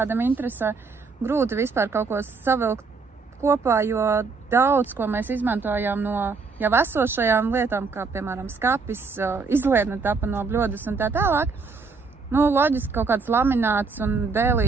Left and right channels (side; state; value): left; quieter; 4.5 dB